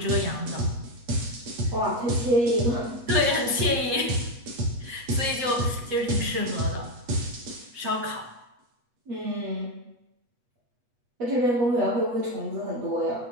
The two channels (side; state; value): left; late; 8.3 ms